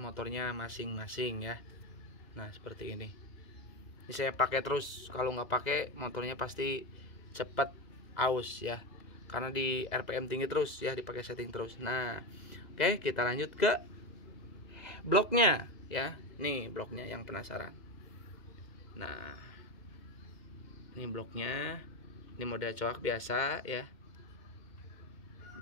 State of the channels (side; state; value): right; late; 1.9 ms